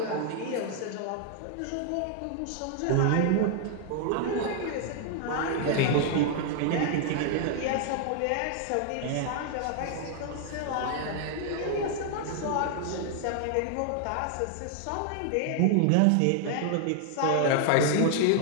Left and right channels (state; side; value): different; both; correlation 0.00